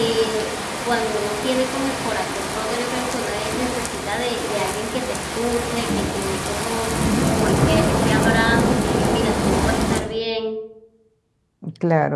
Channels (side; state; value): both; identical; correlation 1.00